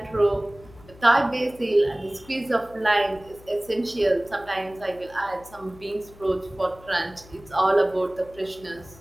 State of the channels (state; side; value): noise; left; hum, 22 dB below the sound